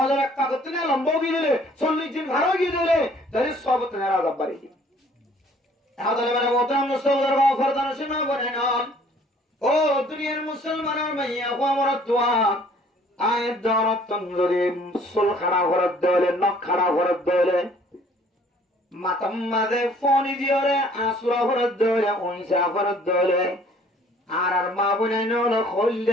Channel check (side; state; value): both; normal; correlation 0.57